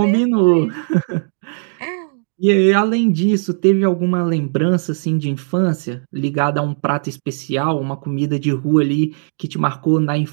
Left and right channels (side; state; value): left; silent; digital silence